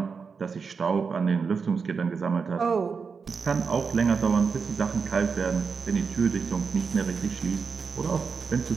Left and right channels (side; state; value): left; quieter; 5.4 dB